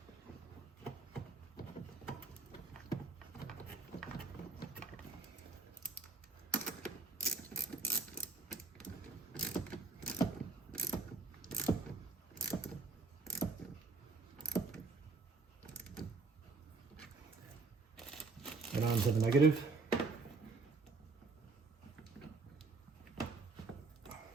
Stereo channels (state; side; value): quieter; left; 4.1 dB